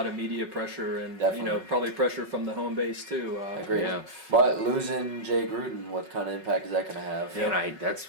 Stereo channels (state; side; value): late; left; 5.4 ms